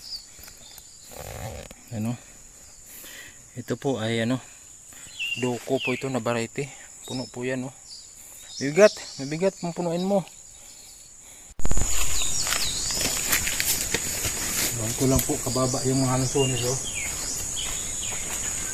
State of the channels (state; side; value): identical; both; correlation 1.00